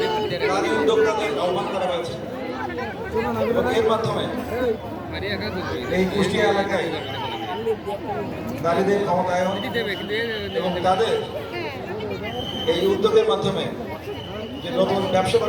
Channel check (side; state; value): both; identical; correlation 1.00